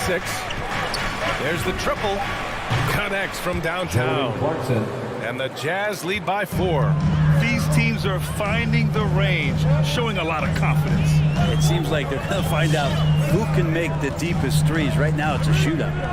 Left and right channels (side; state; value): both; identical; correlation 1.00